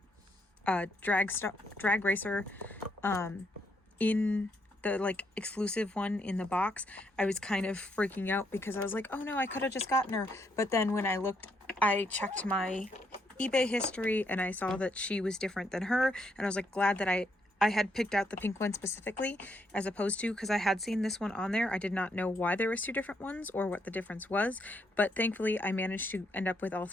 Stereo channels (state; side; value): normal; both; correlation 0.75